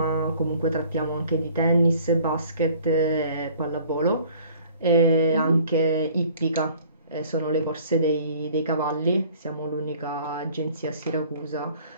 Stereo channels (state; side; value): inverted; both; correlation -0.53